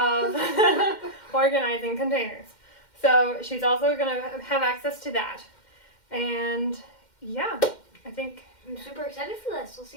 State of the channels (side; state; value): right; late; 2.1 ms